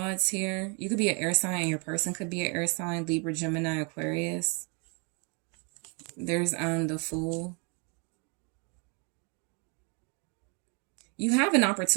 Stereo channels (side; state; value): left; quieter; 34.5 dB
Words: here. You could be an air sign and your person could be an air sign. Libra, Gemini, Aquarius. There's the Fool. You have an